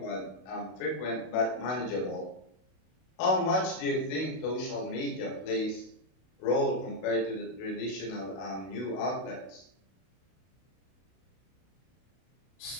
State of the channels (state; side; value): late; right; 32 ms